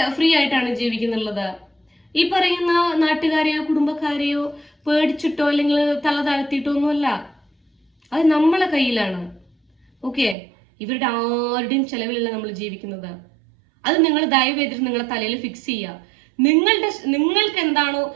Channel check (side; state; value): left; drops out; at 10.4 s